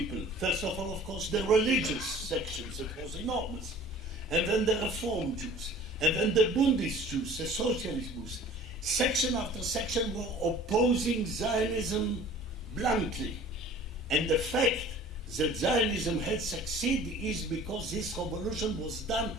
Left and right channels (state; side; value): normal; both; correlation 0.48